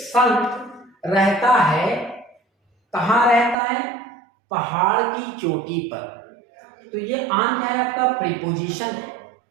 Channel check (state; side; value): drops out; left; at 3.6 s